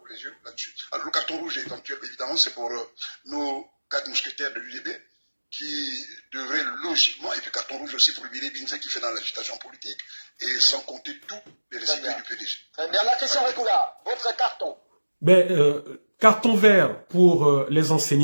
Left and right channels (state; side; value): inverted; both; correlation -1.00